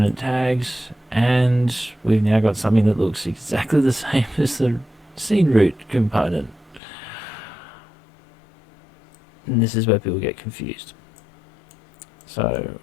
tags, and we've now got something that looks exactly the same as the scene root component. And this is where people get confused. So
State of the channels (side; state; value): right; drops out; at 6.8 s